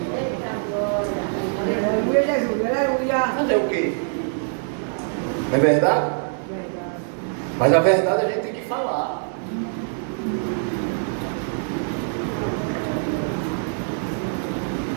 Aleluia, Jesus, aleluia. Fazer o quê? Não é verdade? Mas a verdade a gente tem que falar.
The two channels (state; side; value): silent; left; 63 dB below the other